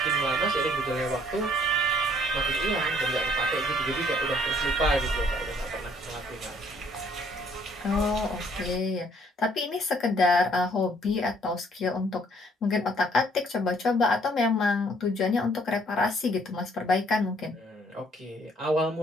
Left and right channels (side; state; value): both; normal; correlation 0.62